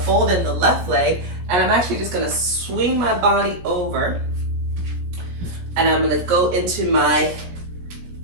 in the left leg, and I'm actually just gonna swing my body over, and I'm gonna go into my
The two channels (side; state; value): left; late; 17 ms